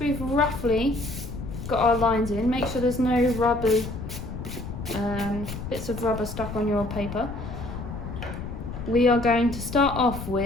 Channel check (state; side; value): noise; left; rumble, 8 dB below the sound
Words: roughly got our lines in, make sure there's no rubber, bits of rubber stuck on your paper. We are going to start off